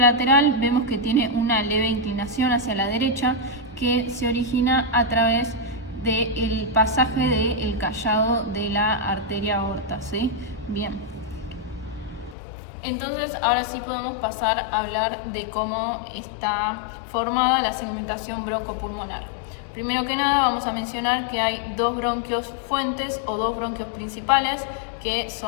vemos que tiene una leve inclinación hacia la derecha que se origina a través del pasaje del callado de la arteria aorta, ¿sí? Bien. Entonces ahora sí podemos pasar a hablar de cómo está formada la segmentación broncopulmonar. Primero que nada vamos a mencionar que hay dos bronquios fuentes o dos bronquios principales, que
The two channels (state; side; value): drops out; right; at 12.4 s